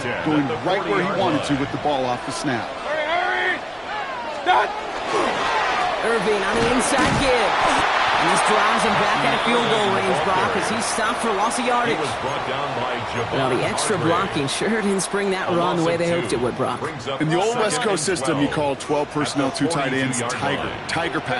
it going right where he wanted to with the ball off the snap. Hurry! Stop! Irving on the inside give. And this drives him back at field goal range, Brock, as he's stopped for loss of yardage. He was brought down by Well, the extra blocking sure didn't spring that run the way they hoped it would, Brock. In the old West Coast system, you call 12 personnel, 2 tight ends, Tiger. Tiger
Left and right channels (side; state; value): both; identical; correlation 1.00